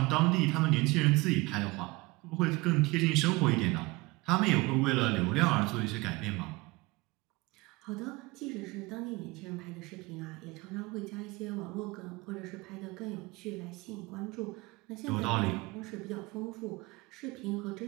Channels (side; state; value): left; quieter; 23.4 dB